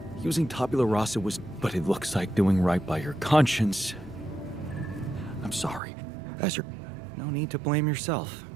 Using tabula rasa was... But it looks like doing right by your conscience. I'm sorry. No need to blame yourself.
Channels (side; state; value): left; drops out; at 5.8 s